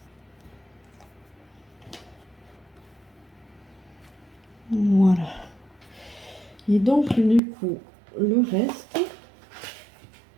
Voilà. Et donc, du coup, le reste,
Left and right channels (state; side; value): drops out; left; at 7.4 s